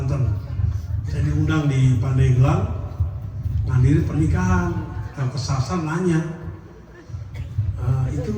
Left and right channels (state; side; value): identical; both; correlation 1.00